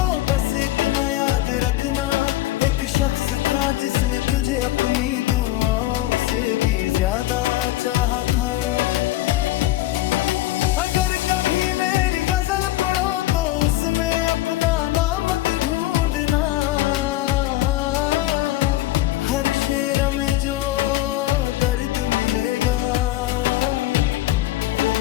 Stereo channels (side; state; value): right; quieter; 15.9 dB